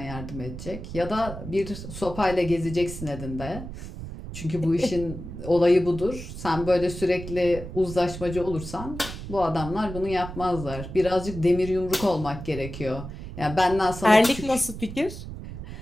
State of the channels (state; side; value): noise; right; rumble, 10 dB below the sound